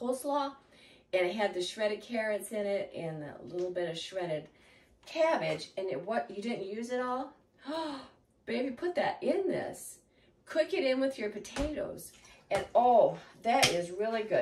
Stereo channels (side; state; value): both; identical; correlation 1.00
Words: and it had the shredded carrots in it and a little bit of shredded cabbage and you didn't use it all, baby, put that in this. Cook it in with your potatoes. And oh, that is really